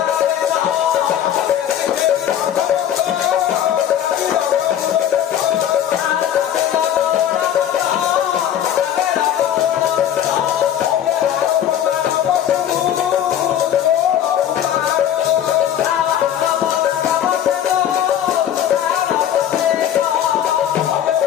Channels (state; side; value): quieter; right; 10.3 dB